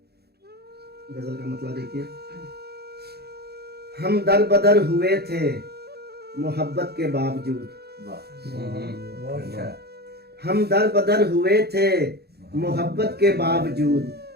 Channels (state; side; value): late; left; 0.47 ms